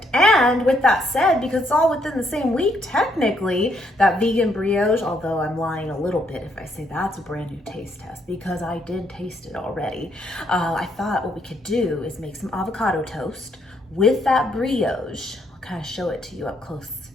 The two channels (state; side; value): normal; both; correlation 0.73